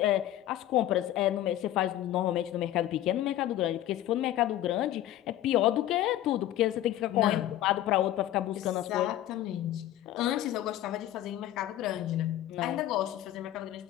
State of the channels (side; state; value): right; quieter; 13.3 dB